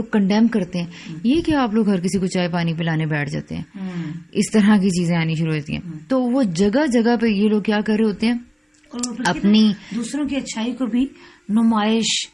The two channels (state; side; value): identical; both; correlation 1.00